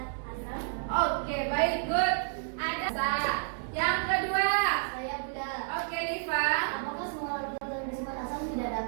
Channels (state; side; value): silent; left; digital silence